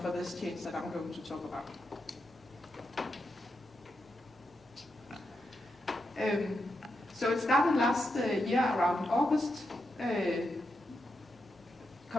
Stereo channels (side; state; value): right; noise; hum, 29 dB below the sound